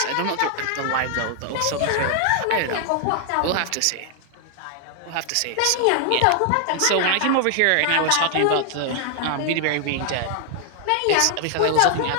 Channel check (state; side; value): different; both; correlation 0.00